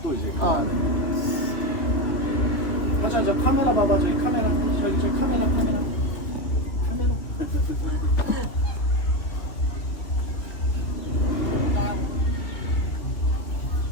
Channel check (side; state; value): right; late; 3.0 ms